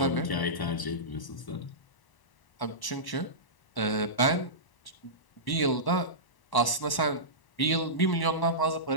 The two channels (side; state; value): right; late; 1.0 ms